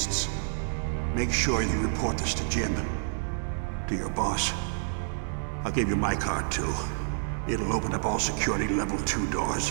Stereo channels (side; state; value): left; silent; digital silence